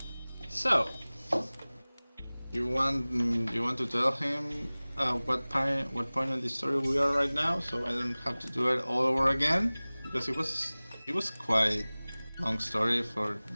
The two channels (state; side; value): inverted; both; correlation -1.00